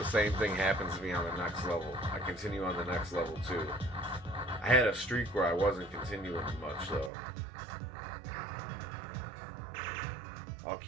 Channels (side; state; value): left; drops out; at 7.1 s